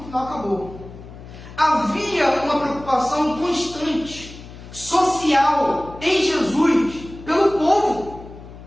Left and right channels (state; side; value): noise; left; hum, 16 dB below the sound